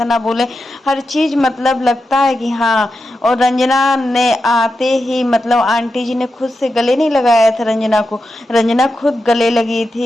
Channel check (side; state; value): both; normal; correlation 0.89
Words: ना बोले, हर चीज मतलब लगता है कि हाँ। और रंजना ने आते ही मतलब आंटी जी ने खुद से गले नहीं लगाया था रंजना को, रंजना खुद गले लगी